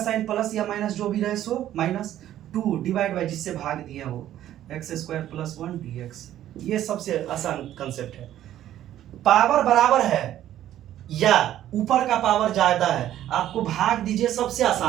प्लस या माइनस जो भी रहे सो माइनस 2 डिवाइड बाय जिससे भाग दिया वो एक्स स्क्वायर प्लस 1 dx। ये सबसे आसान कंसेप्ट है। पावर बराबर है या ऊपर का पावर ज्यादा है, आपको भाग दीजिए। सबसे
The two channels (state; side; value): quieter; left; 12.3 dB